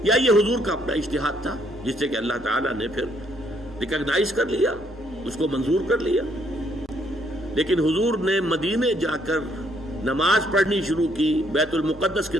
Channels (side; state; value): both; normal; correlation 0.69